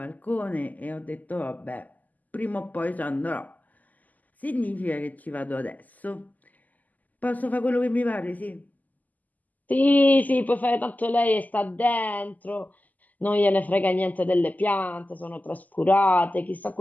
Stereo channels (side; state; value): right; late; 0.080 ms